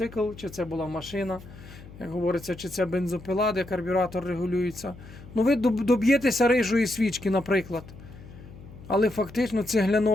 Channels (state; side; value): noise; left; hum, 17 dB below the sound